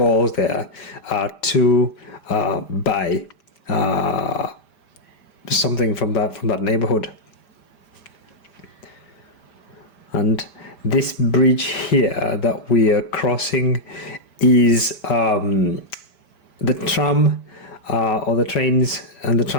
there to buy something from that neighborhood. And this bridge here that we are crossing is the tram, or the trains and the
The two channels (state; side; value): late; right; 5.0 ms